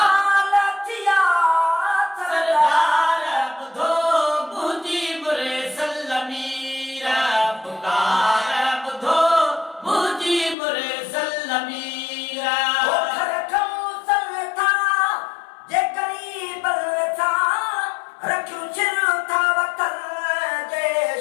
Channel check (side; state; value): right; drops out; at 10.6 s